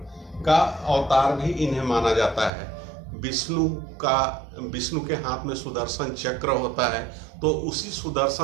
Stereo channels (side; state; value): left; drops out; at 2.5 s